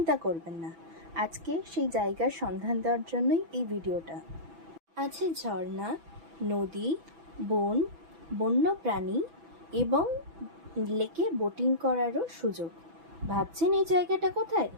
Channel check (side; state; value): left; late; 6.0 ms